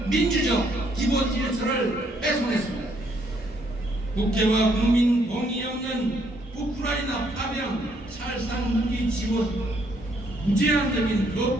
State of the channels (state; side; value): normal; both; correlation 0.69